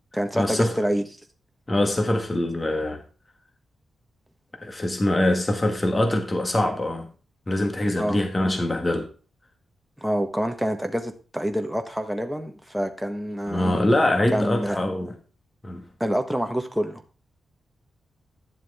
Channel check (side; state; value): both; normal; correlation 0.96